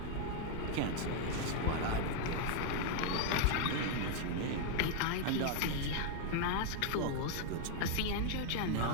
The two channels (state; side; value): different; both; correlation 0.00